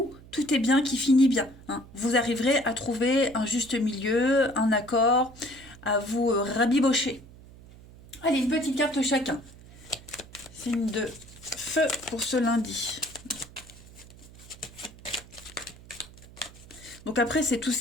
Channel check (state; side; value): noise; right; hum, 20 dB below the sound